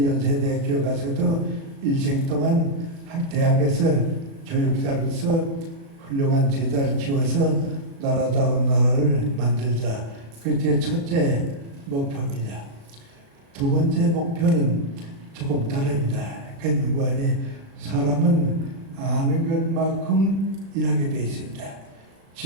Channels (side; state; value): left; late; 36 ms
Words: 연세대학교 가서도 일생 동안 대학에서 교육자로서 훌륭한 제자를 키워서 나라다운 나라를 만들자. 그게 제 첫째 목표입니다. 두 번째 목표는 조금 다릅니다. 그 무관히 사람은 아는 것만큼 일하게 되어 있습니다.